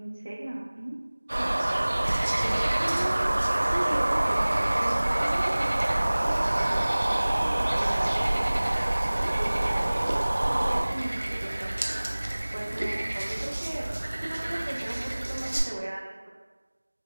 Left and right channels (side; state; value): both; inverted; correlation -1.00